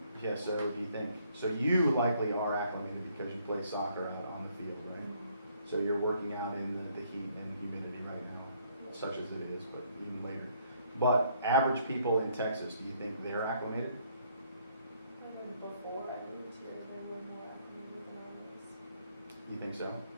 too? Yeah, so do you think? So you likely are acclimated because you play soccer out on the field, right? So you're working out in the heat and humidity right now, such as it is, but even later. But average people in Texas, do you think they're acclimated? And before I moved here, there were more acclimated than others. You think so?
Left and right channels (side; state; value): both; inverted; correlation -0.67